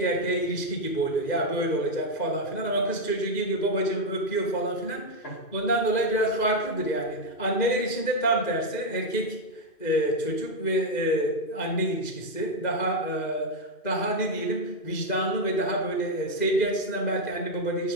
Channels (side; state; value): right; late; 2.1 ms